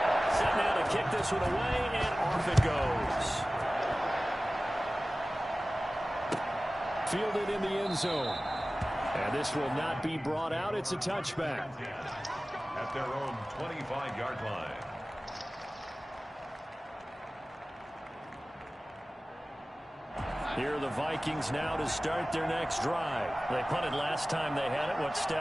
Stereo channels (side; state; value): both; normal; correlation 0.97